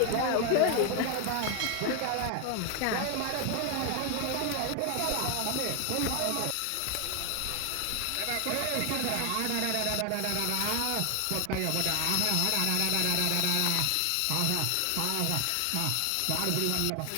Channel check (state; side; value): different; both; correlation 0.01